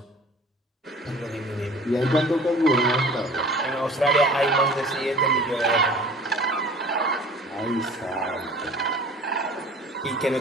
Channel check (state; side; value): normal; both; correlation 0.45